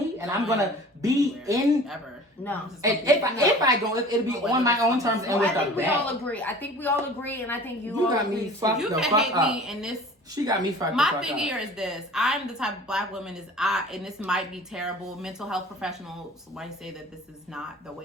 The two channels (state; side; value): normal; both; correlation 0.43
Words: and I'm going to be in... Ever. No. And if I go, it'll be on my own terms and with a bag. I think we all agree. And I think you all got agree. me fucked you the can fuck hate up. me in this. She got me fucked the fuck up. My thing here is this. I'm the type of black woman and this might be terrible. Mental health professionals might say that this is not the